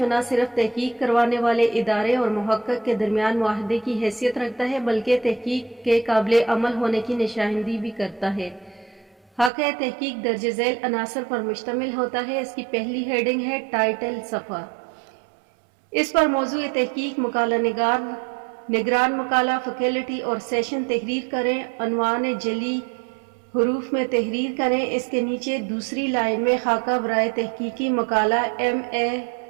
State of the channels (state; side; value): drops out; left; at 9.5 s